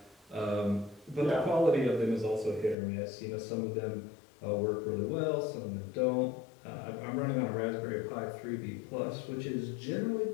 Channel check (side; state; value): right; drops out; at 2.8 s